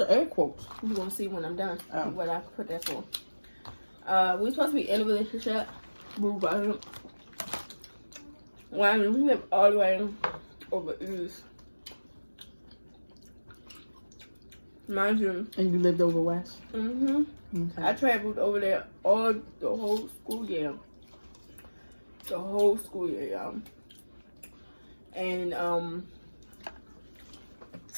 air quotes? You gonna see when I'm done what I put that for. We were supposed to be in a relationship. When we live all the way over east. Mind you. And you lived over west? Mm-hmm. Okay. I traveled over there the whole school year. The whole school year, y'all. And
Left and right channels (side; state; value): both; inverted; correlation -1.00